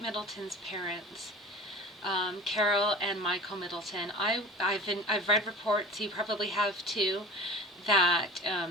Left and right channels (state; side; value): normal; both; correlation 0.37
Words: parents, Carole and Michael Middleton. I've read reports, you probably have too, that